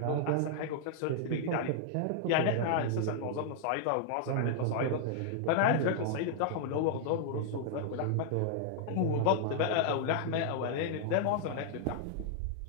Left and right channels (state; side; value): different; both; correlation -0.01